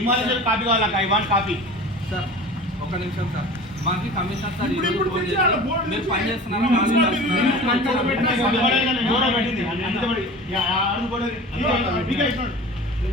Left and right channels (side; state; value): both; normal; correlation 0.38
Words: కావాలా? I want copy. సార్ ఒక నిమిషం సార్, మాకు కమిషనర్ సార్ మీరు పని చేస్తున్నారా?